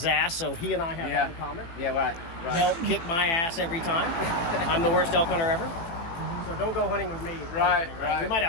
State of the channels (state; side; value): late; right; 18 ms